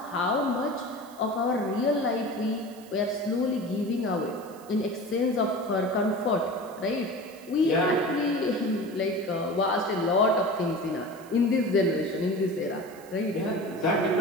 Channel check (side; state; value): right; noise; hiss, 23 dB below the sound